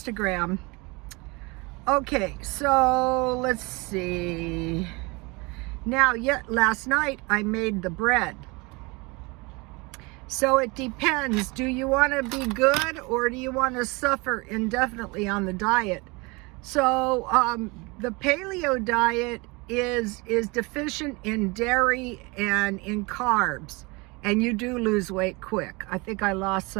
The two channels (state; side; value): quieter; left; 26.5 dB